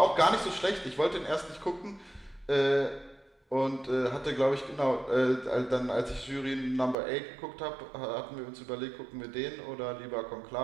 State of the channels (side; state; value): left; drops out; at 7.0 s